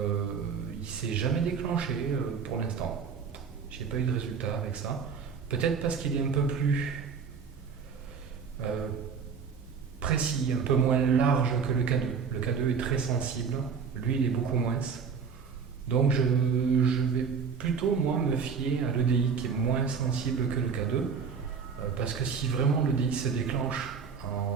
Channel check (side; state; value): left; quieter; 6.0 dB